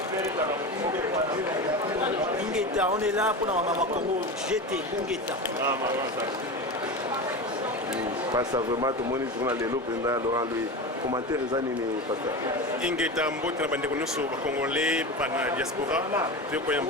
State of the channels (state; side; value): normal; both; correlation 0.25